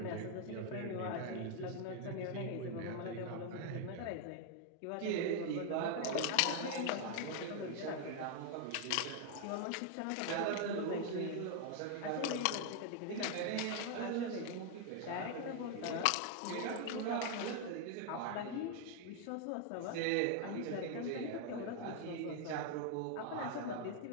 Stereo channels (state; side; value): different; both; correlation 0.00